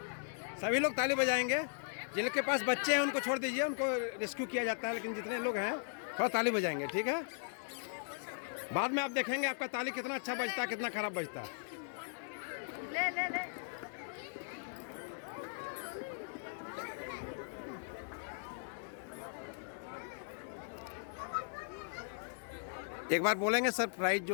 सभी लोग ताली बजाएंगे। जिनके पास बच्चे हैं उनको छोड़ दीजिए, उनको रेस्क्यू किया जाता है, लेकिन जितने लोग हैं थोड़ा ताली बजाएंगे। ठीक है? बाद में आप देखेंगे आपका ताली कितना अच्छा बजता है, कितना खराब बजता है। ले। एक बार बोलेंगे सर, प्राइज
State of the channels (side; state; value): right; silent; digital silence